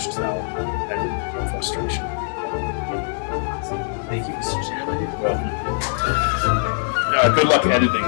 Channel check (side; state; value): right; silent; 61 dB below the other